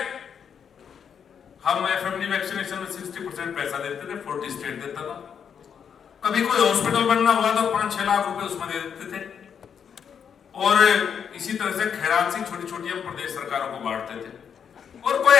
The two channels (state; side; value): quieter; right; 7.5 dB